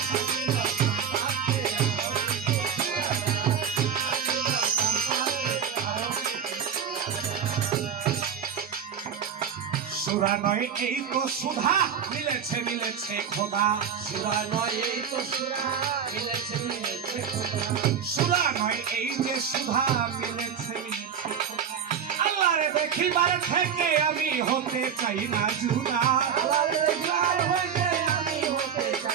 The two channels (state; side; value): quieter; left; 7.6 dB